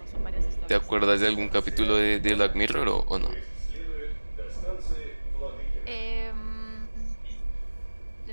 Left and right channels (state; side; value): inverted; both; correlation -1.00